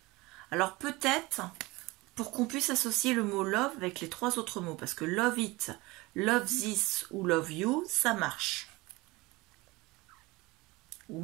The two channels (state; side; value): quieter; left; 22.2 dB